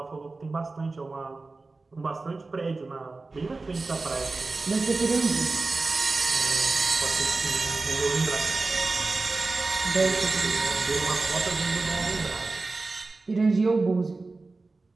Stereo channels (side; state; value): left; quieter; 3.6 dB